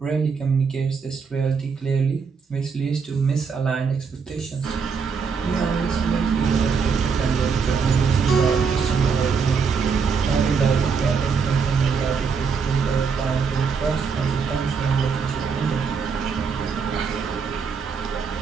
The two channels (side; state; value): left; quieter; 5.7 dB